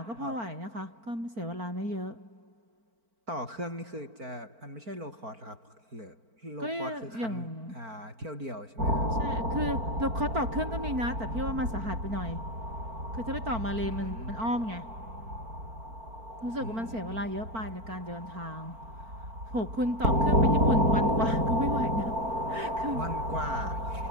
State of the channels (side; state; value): left; late; 4.4 ms